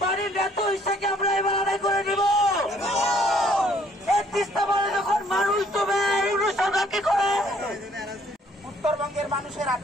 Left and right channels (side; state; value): both; normal; correlation 0.62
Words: আমরা এবার আদায় করে নিব। যখন মানুষ তবে সরকারকে করে উত্তরবঙ্গের মানুষের